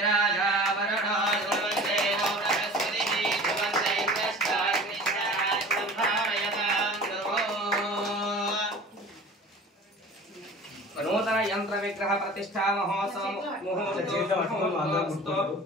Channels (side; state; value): both; normal; correlation 0.41